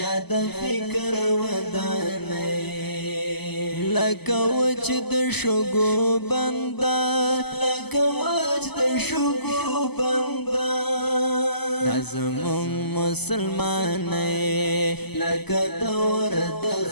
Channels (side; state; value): right; late; 0.99 ms